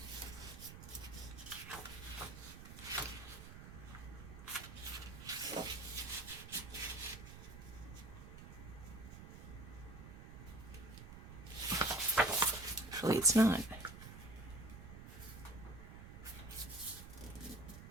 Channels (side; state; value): right; noise; rumble, 12 dB below the sound